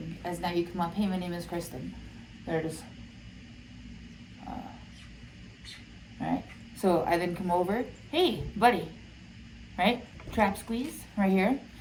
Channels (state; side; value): identical; both; correlation 1.00